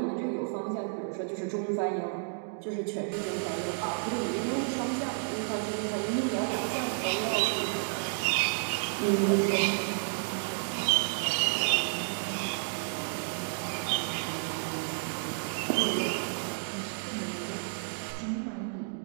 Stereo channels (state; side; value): silent; left; digital silence